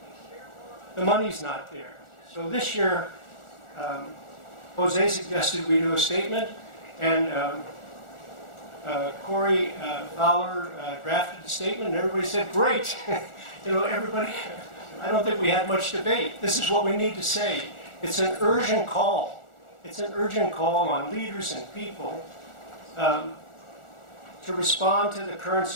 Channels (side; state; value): right; late; 1.4 ms